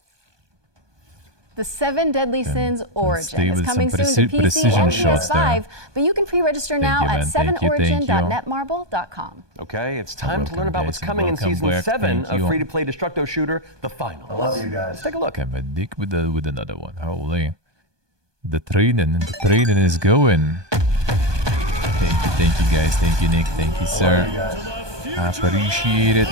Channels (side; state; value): left; late; 1.2 ms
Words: The Seven Deadly Sins Origin is coming soon to PC precision and shots PS5, there. but you can pre-register now you, at man. Thank you. 7origin.netmarble.com. Okay, it's time to learn about what's guys, coming in welcome Season back. 7 Thank of you. free-to-play Destructo Shooter, The Final. I love you guys. Let's take a look. I'm a dick with another one. Holy. The training is going. Thank you guys. Thank you, Nick. Thank you, sir. I appreciate it.